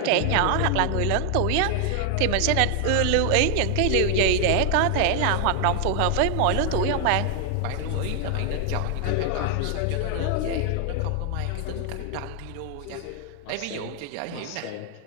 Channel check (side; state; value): both; different; correlation 0.00